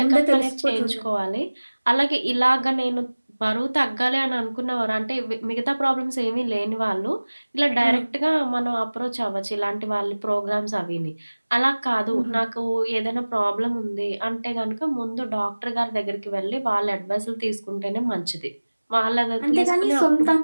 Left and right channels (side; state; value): both; inverted; correlation -1.00